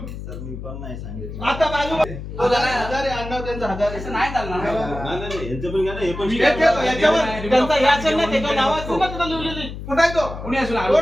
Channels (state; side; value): noise; left; hum, 9 dB below the sound